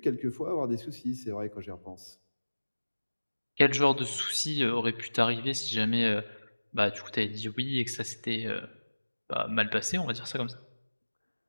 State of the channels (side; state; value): both; inverted; correlation -1.00